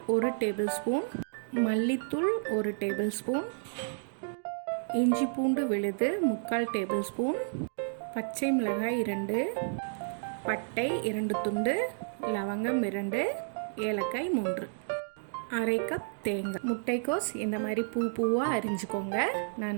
1 டேபிள் ஸ்பூன், மல்லித்தூள் 1 டேபிள் ஸ்பூன், இஞ்சி பூண்டு விழுது 3/4 டேபிள் ஸ்பூன், பச்சை மிளகாய் 2, பட்டை 2 துண்டு, லவங்கம் 2, ஏலக்காய் 3, அரை கப் தேங்காய். முட்டைக்கோஸ் இந்த மாதிரி பூவாக அரிஞ்சுக்கோங்க.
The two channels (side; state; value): left; silent; digital silence